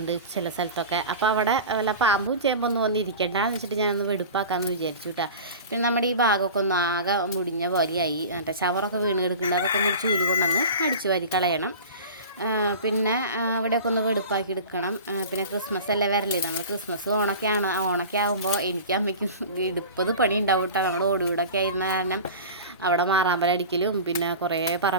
ചില സ്ഥലത്തൊക്കെ. അപ്പോൾ അവിടെ വല്ല പാമ്പും ചേമ്പൊന്നും വന്നിരിക്കേണ്ടെന്ന് വെച്ചിട്ട് ഞാനൊന്ന് വെടുപ്പാക്കാമെന്ന് വിചാരിച്ചു കേട്ടോ. പിന്നെ നമ്മുടെ ഈ ഭാഗമൊക്കെ ഒന്ന് ആകെ മുടിഞ്ഞ പോലെയായി, മറ്റേ ഷവറൊക്കെ വീണ് കിടക്കുന്നുണ്ട്. അതൊക്കെ ഒന്ന് ചൂല് കൊണ്ടൊന്ന് അടിച്ചു വാരി കളയണം. പിന്നെ അവിടെയൊക്കെ ഒന്ന് വെടുപ്പാക്കി എടുക്കണം. പിന്നെ ക്രിസ്മസ് അല്ലേ വരല്ലേ, നമ്മൾ ക്രിസ്മസ് ഓണൊക്കെ ആകുമ്പോൾ എനിക്ക് അമ്മയ്ക്കും എടുപ്പത് പണി ഉണ്ടാവും കേട്ടോ. നമ്മൾ ഓടുകൂടൊക്കെ ആയിരുന്ന കാരണം അവിടെ മാറാമ്പലടിക്കലും പിന്നെ കുറേ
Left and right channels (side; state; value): both; inverted; correlation -0.35